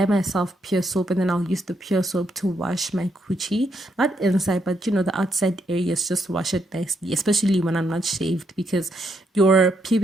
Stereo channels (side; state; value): both; normal; correlation 0.78